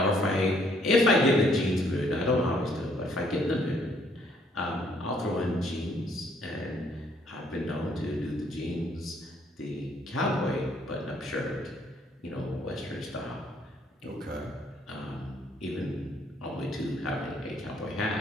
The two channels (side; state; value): both; normal; correlation 0.66